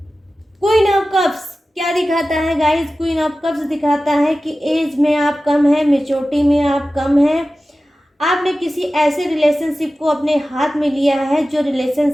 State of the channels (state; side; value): normal; both; correlation 0.95